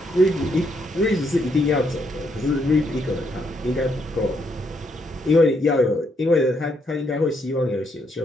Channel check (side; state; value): both; normal; correlation 0.75